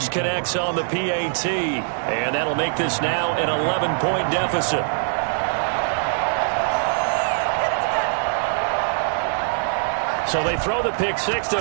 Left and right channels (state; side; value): silent; left; digital silence